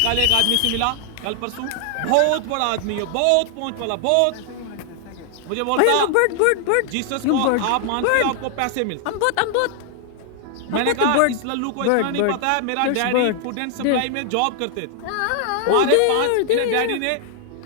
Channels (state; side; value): different; both; correlation 0.00